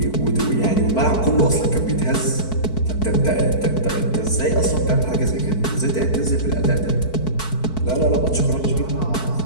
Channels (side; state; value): right; late; 4.6 ms